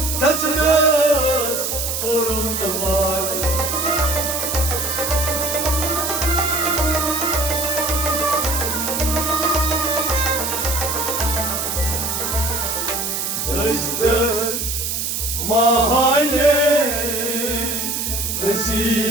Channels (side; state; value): right; noise; hiss, 2 dB below the sound